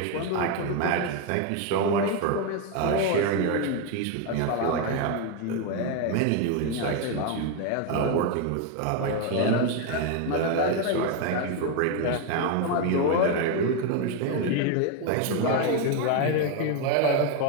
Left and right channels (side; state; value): both; different; correlation 0.01